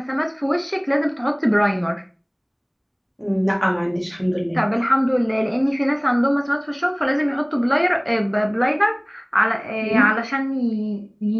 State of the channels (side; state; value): both; identical; correlation 1.00